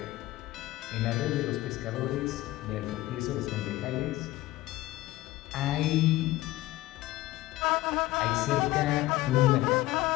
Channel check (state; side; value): quieter; right; 17.2 dB